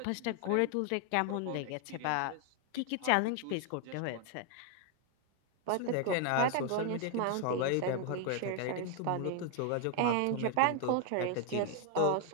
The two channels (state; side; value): different; both; correlation 0.00